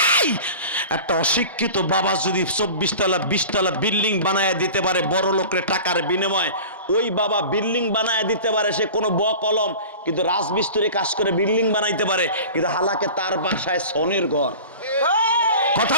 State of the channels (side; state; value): both; inverted; correlation -0.38